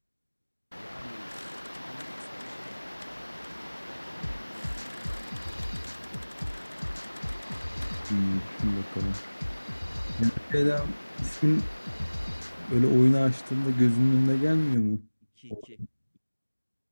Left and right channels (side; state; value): both; inverted; correlation -1.00